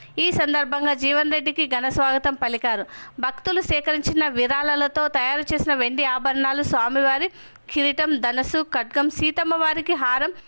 ఈ సందర్భంగా జీవన్ రెడ్డికి ఘన స్వాగతం పలికారు. భక్తులు సేకరించిన విరాళాలతో తయారు చేసిన వెండి ఆభరణాలు, స్వామివారి కిరీటం, ధనస్సు, ఖడ్గం, సీతమ్మ వారికి హారం,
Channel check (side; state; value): both; inverted; correlation -1.00